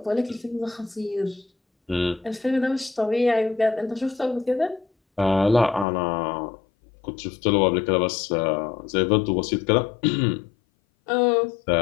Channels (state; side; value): drops out; right; at 5.9 s